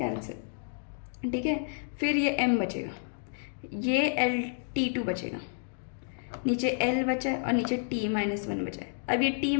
ठीक है। फिर ये एम बचेगा, ये एल T2 बचेगा, नीचे एल बचा है और नीचे T-1 बचा है। अब ये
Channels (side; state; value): right; silent; digital silence